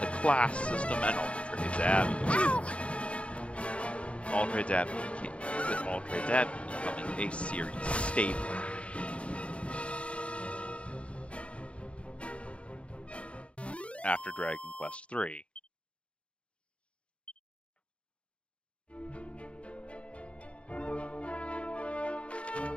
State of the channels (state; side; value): late; right; 0.061 ms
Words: class system and Aldred's Abbey. Aldred's Abbey with Aldred's Abbey becoming a series staple. After Dragon Quest III.